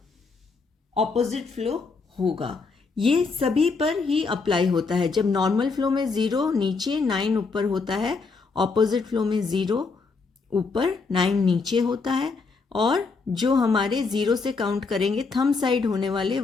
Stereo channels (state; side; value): quieter; right; 4.4 dB